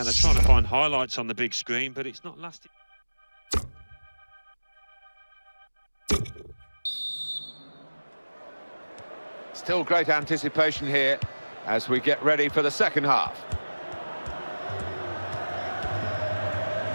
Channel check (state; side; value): inverted; both; correlation -1.00